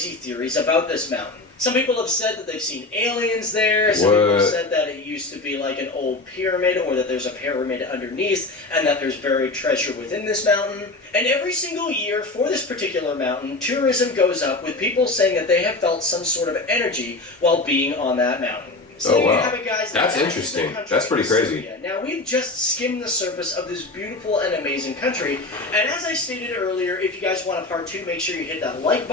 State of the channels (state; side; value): quieter; right; 3.1 dB